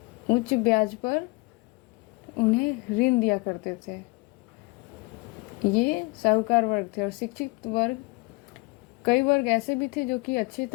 ब्याज पर उन्हें ऋण दिया करते थे। ये साहूकार वर्ग थे। और शिक्षित वर्ग, कई वर्ग ऐसे भी थे जो कि अच्छे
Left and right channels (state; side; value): quieter; right; 26.2 dB